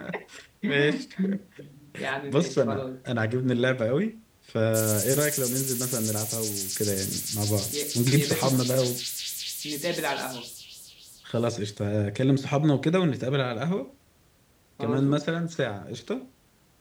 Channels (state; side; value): identical; both; correlation 1.00